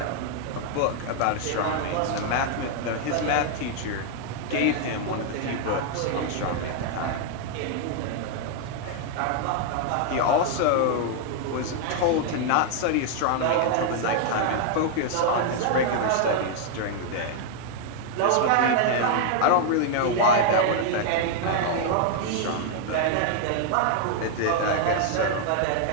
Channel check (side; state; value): both; different; correlation 0.00